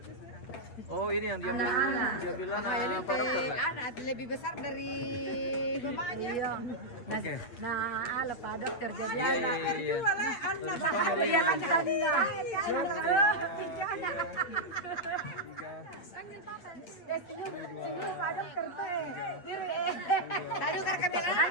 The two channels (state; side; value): late; right; 8.4 ms